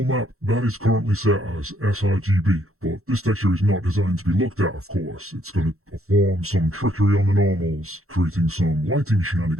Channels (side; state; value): left; late; 0.63 ms